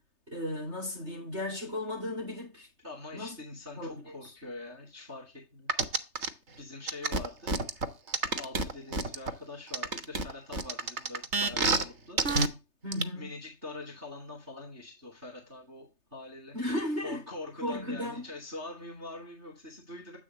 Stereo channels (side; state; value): left; late; 3.3 ms